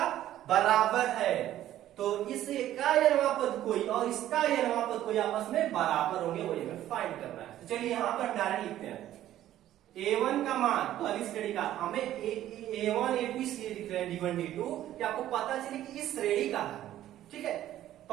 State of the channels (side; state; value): left; quieter; 12.9 dB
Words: बराबर है, तो इसका यनवा पद कोई और इसका यनवा पद कोई आपस में बराबर होंगे, वही हमें फाइंड करना है। तो चलिए यहाँ पर डायरेक्ट लिखते हैं A1 का मान, पहली श्रेणी का हमें A1 A2 इसलिए लिख रहे हैं D1 D2 कि आपको पता चले कि इस श्रेणी का है, ठीक है।